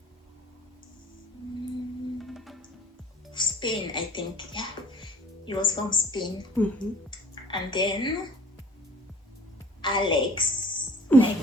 Spain, I think. Yeah, he was from Spain. And then Alex, my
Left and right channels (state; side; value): normal; both; correlation 0.49